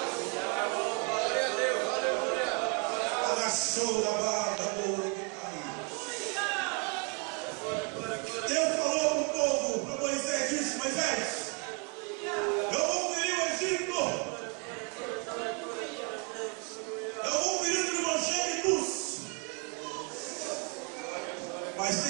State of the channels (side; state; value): left; quieter; 35.6 dB